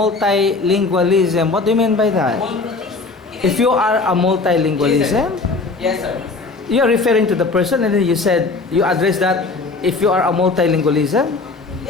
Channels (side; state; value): right; quieter; 3.9 dB